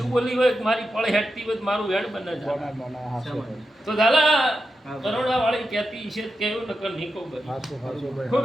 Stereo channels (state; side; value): normal; both; correlation 0.88